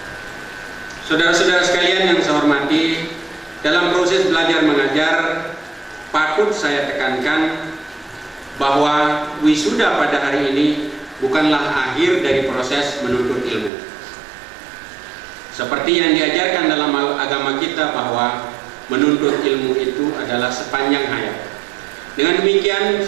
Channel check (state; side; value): drops out; left; at 13.7 s